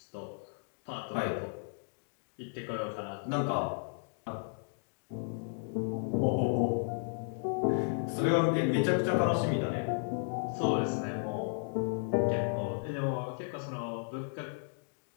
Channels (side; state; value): right; silent; digital silence